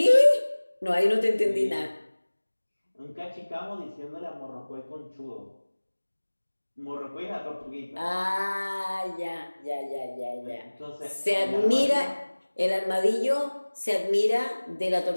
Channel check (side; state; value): both; inverted; correlation -1.00